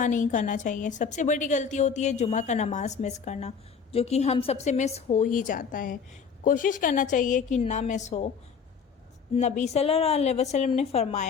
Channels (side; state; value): right; quieter; 6.2 dB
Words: نہیں کرنا چاہیے؟ سب سے بڑی غلطی ہوتی ہے جمعہ کا نماز مس کرنا، جو کہ ہم سب سے مس ہو ہی جاتا ہے۔ کوشش کرنا چاہیے کہ نہ مس ہو۔ نبی صلی اللہ علیہ وسلم نے